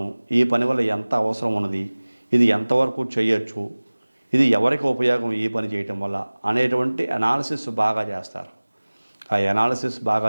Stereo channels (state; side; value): inverted; both; correlation -1.00